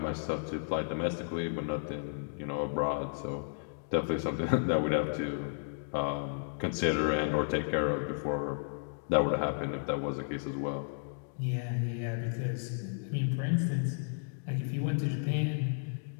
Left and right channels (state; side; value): silent; right; digital silence